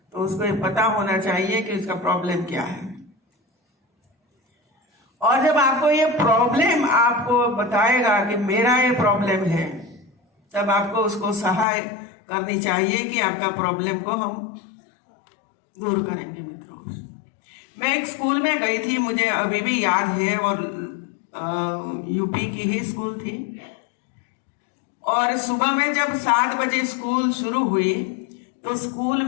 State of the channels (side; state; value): right; drops out; at 11.7 s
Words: तो उसको ये पता होना चाहिए कि उसका प्रॉब्लम क्या है। और जब आपको ये प्रॉब्लम आपको बताएगा कि मेरा ये प्रॉब्लम है, तब आपको उसको सहाय करनी चाहिए कि आपका प्रॉब्लम को हम दूर करेंगे मित्रों। मैं एक स्कूल में गई थी, मुझे अभी भी याद है, और यूपी की ही स्कूल थी। और सुबह में जब 7 बजे स्कूल शुरू हुई तो स्कूल